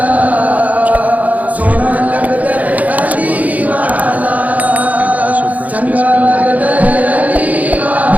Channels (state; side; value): late; left; 0.075 ms